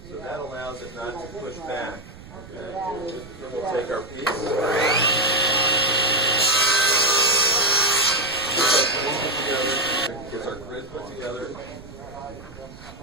So that allows it not to push back. Okay. We'll take our piece. Gets our grid put together,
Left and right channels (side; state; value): right; noise; rumble, 18 dB below the sound